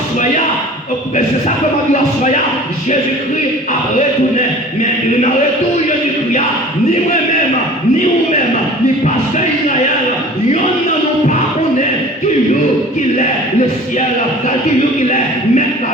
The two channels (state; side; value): normal; both; correlation 0.44